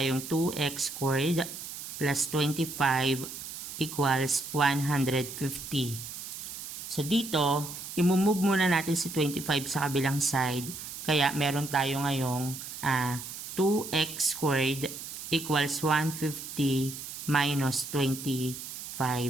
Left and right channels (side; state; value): right; noise; hiss, 9 dB below the sound